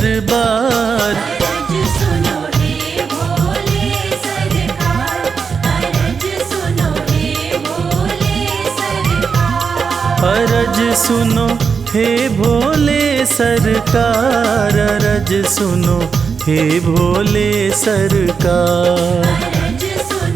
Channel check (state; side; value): quieter; left; 5.8 dB